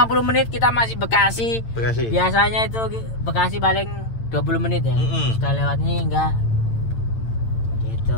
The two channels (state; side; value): late; right; 8.9 ms